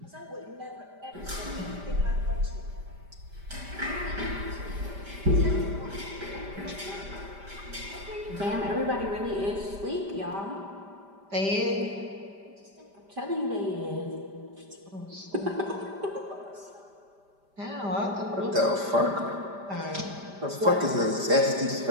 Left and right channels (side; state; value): left; late; 5.1 ms